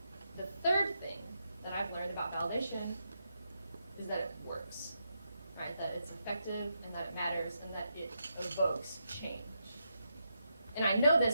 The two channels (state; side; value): inverted; both; correlation -0.83